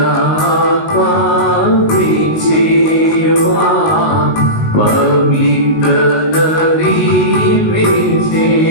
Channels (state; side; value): late; right; 19 ms